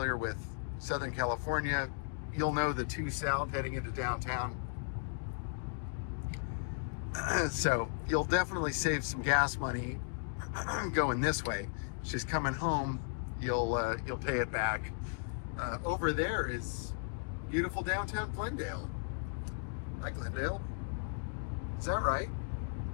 with Southern California, you'll know the 2 South heading into downtown. So you'll definitely save some gas money going this way. It's just coming home, you'll pay it back. Over there is beautiful downtown Glendale. Hi, Glendale. Is that right?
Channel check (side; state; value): right; silent; digital silence